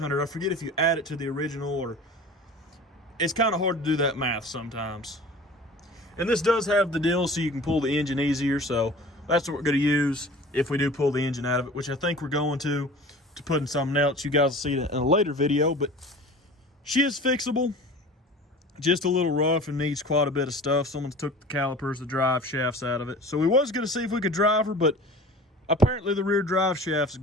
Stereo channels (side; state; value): both; normal; correlation 0.41